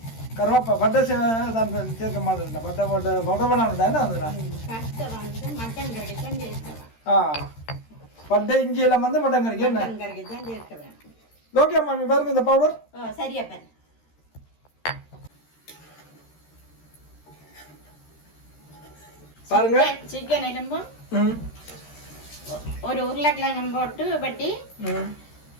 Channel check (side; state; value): right; late; 13 ms